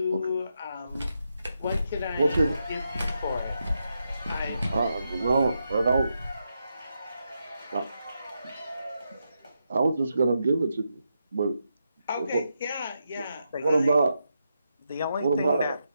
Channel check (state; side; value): inverted; both; correlation -0.84